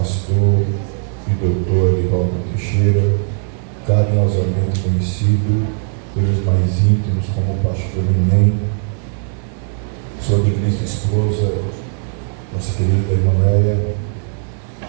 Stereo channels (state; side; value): silent; left; 68 dB below the other